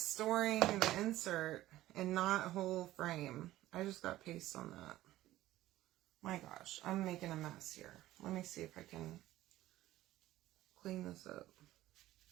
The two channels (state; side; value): quieter; left; 15.3 dB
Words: storing the insert and not a whole frame. I just got paste on that. My gosh, I'm making a mess here. Let me see if I can clean this up.